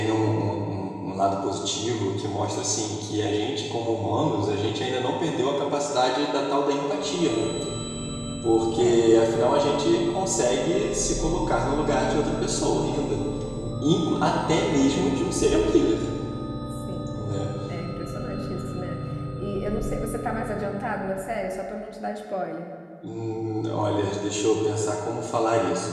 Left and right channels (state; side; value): identical; both; correlation 1.00